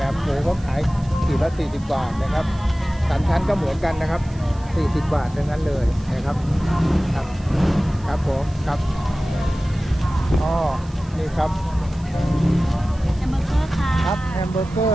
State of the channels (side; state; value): right; noise; hiss, 25 dB below the sound